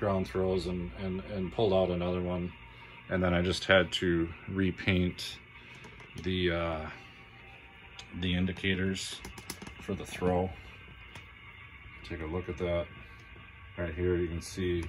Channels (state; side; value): identical; both; correlation 1.00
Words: throws, and pulled out another one, and then I just had to repaint the indicators for the throw. Take a look at that right here. You can see